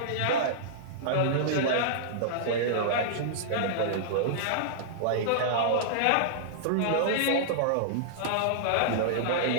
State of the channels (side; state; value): both; different; correlation -0.02